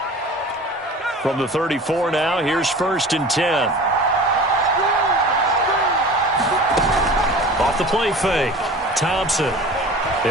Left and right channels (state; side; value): normal; both; correlation 0.39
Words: From the 34 now, here's 1st and 10. Off the play fake. Thompson.